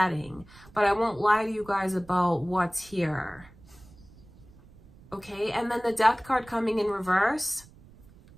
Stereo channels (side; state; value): right; noise; rumble, 23 dB below the sound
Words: But I won't lie to you guys about what's here. Okay, and then the Death card coming in reverse